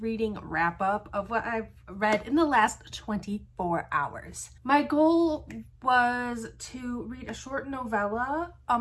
wrap up of what I've read in the last 24 hours. My goal was to read a short novella, a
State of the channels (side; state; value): both; identical; correlation 1.00